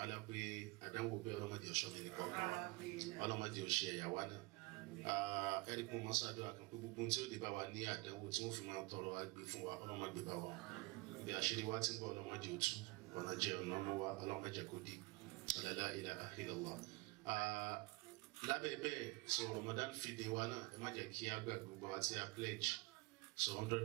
pé àdánwò bẹ́ẹ̀ ọlọ́mọdé ọ̀ṣọ́ mi nìkan ọlọ́mọdé ọ̀ṣẹ́ ẹ̀yàwó náà ẹni kún mọ́ sáájú àkàn pé gbogbo tí ó lè bá wa ní àdánwò tí wọ́n fi máa tọrọ agbè fún wa ọlọ́mọdé bá wa bí àṣírí wa ti ń bọ̀ ọlọ́mọdé òtú ọ̀nà jẹ́ ọ̀nà ọmọ wa ọlọ́mọdé kò dé la ilaha illallah. Lábẹ́ bẹ́ẹ̀ so Ramadan feeding wa náà ẹ má jẹ́ kí á gbàgbé gbogbo wa tí a pledge so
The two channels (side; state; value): left; quieter; 24.6 dB